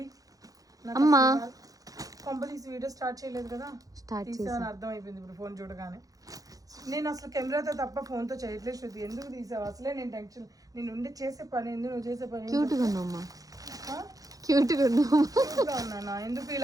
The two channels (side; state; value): left; late; 0.17 ms